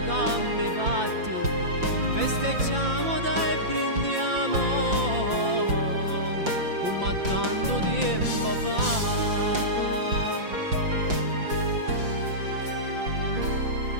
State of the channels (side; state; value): left; late; 5.8 ms